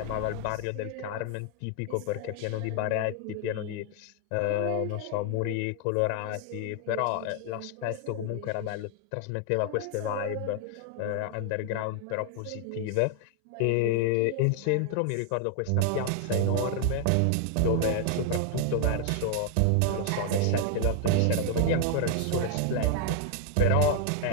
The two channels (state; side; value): different; both; correlation 0.00